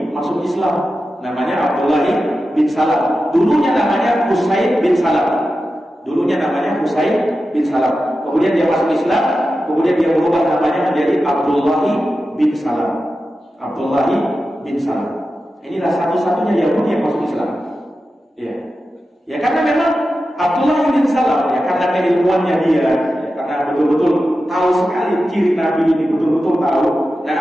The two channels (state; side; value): normal; both; correlation 0.92